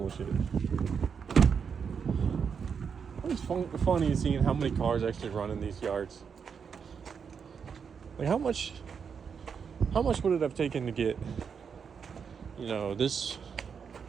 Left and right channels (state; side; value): quieter; left; 6.5 dB